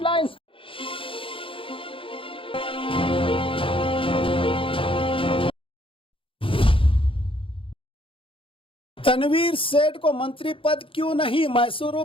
तनवीर सेठ को मंत्री पद क्यों नहीं? मैसूरू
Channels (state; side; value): late; right; 0.26 ms